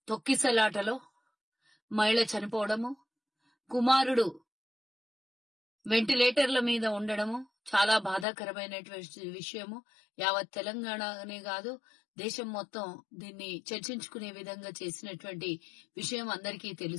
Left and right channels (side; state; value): right; drops out; at 8.2 s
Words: తొక్కిసలాటలో మహిళ చనిపోవడము, కుమారుడు వెంటిలేటర్ల మీద ఉండడము చాలా బాధాకరమైనటువంటి విషయము. యావత్ తెలంగాణనే కాదు, దేశం మొత్తం దీన్ని చర్చించుకునే విధంగా చేసినటువంటి విషయం అందరికీ